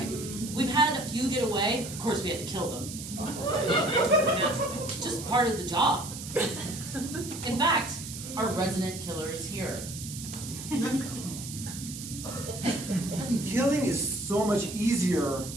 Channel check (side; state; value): right; noise; hiss, 10 dB below the sound